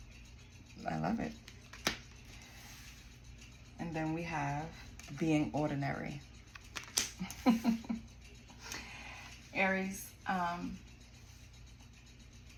I love it. And then we have being ordinary. Aries,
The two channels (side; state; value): both; identical; correlation 1.00